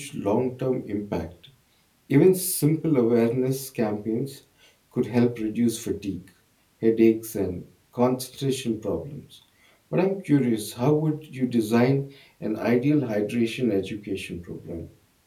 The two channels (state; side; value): identical; both; correlation 1.00